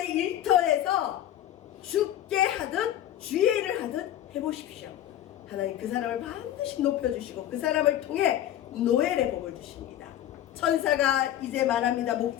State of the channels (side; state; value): right; quieter; 11.9 dB